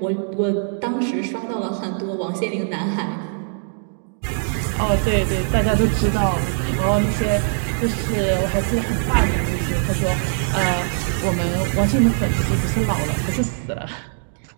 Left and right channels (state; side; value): silent; left; 65 dB below the other